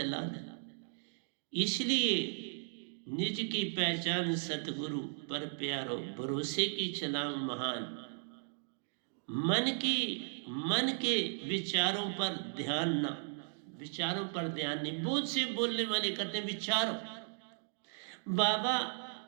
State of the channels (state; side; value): silent; left; digital silence